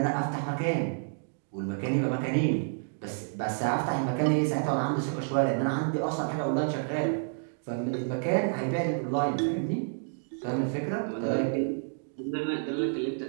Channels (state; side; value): silent; left; digital silence